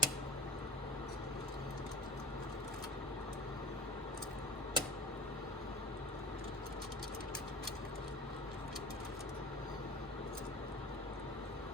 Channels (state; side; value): normal; both; correlation 0.37